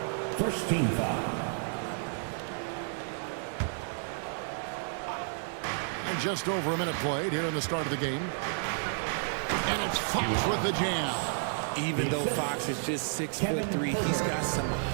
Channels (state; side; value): silent; left; digital silence